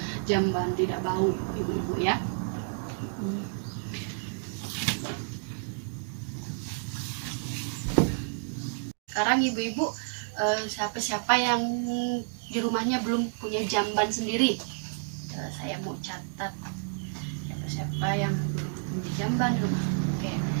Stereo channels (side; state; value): left; silent; digital silence